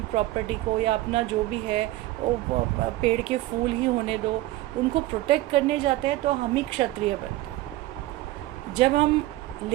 प्रॉपर्टी को या अपना जो भी है वो पेड़ के फूल ही होने दो, उनको प्रोटेक्ट करने जाते हैं तो हम ही क्षत्रिय बनते हैं. जब हम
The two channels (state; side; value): quieter; left; 16.8 dB